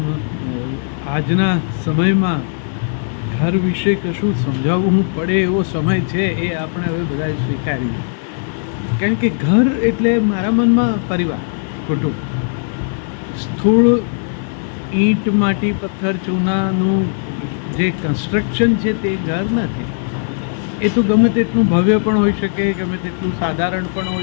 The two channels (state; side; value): silent; right; digital silence